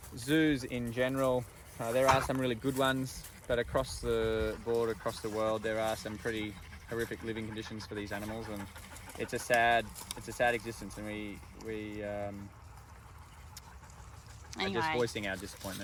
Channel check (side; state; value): both; identical; correlation 1.00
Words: zoos in general, there are some really good ones, but across the board, across the world, there are some pretty horrific living conditions for these animals, and it's a sad existence, and we are just voicing our